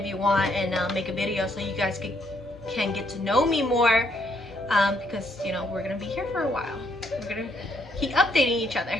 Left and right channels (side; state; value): both; normal; correlation 0.72